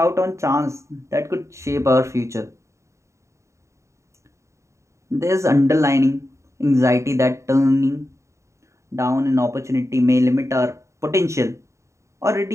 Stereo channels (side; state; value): left; late; 0.14 ms